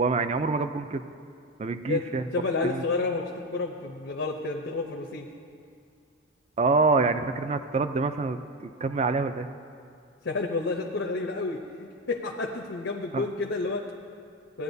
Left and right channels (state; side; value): normal; both; correlation 0.14